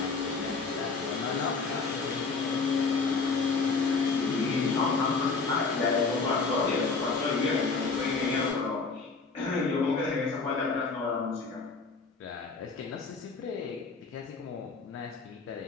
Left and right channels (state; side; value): quieter; right; 4.3 dB